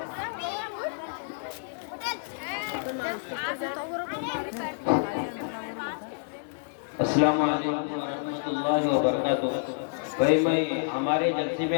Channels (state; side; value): silent; right; digital silence